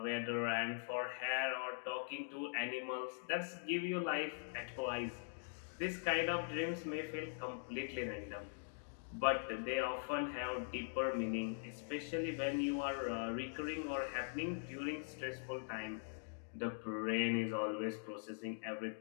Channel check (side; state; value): right; silent; digital silence